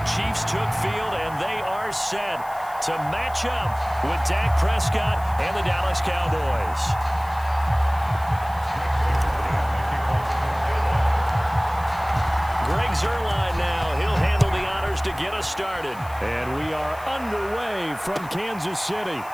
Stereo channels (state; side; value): noise; left; hiss, 22 dB below the sound